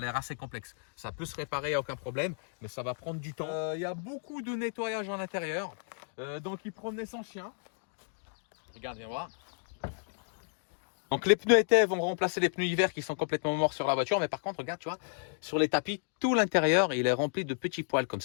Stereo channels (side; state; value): right; silent; digital silence